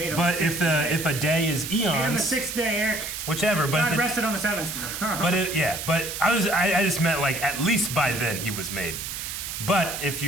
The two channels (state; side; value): noise; right; hiss, 6 dB below the sound